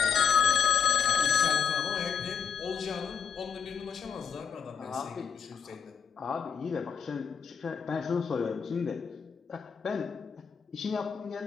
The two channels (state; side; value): quieter; right; 6.7 dB